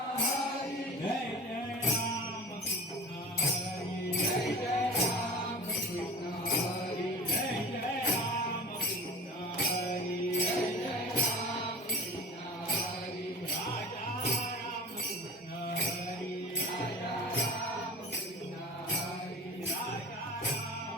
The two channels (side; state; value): both; normal; correlation 0.36